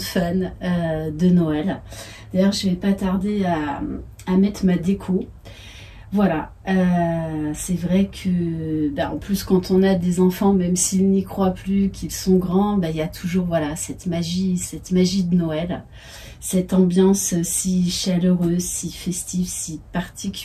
fan de Noël. D'ailleurs, je ne vais pas tarder à mettre ma déco. Voilà, c'est vrai que, en plus quand on a des enfants, même s'ils n'y croient plus, qu'ils sont grands, il y a toujours voilà, cette magie de Noël, cette ambiance si chaleureuse, si festive, si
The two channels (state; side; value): identical; both; correlation 1.00